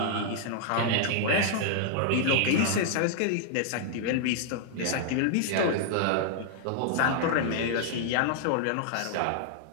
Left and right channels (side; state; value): both; different; correlation -0.01